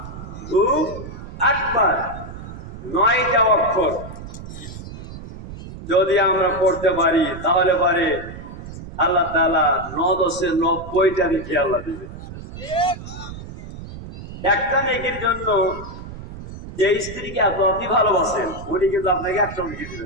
আকবার, 9টা অক্ষর। যদি আমরা পড়তে পারি তাহলে পারে আল্লাহ তাআলা 9-10 90টা রেখে আল্লাহ দিবে। একটা নেকির জন্য যে স্ত্রীকে এত অতি ভালোবাসেন, উনি কিন্তু আপনাকে একটা নেকি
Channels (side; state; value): right; noise; rumble, 12 dB below the sound